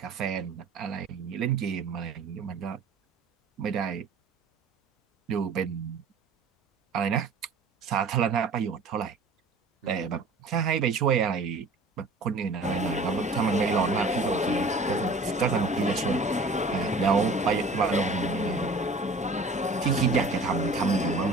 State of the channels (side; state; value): left; quieter; 3.2 dB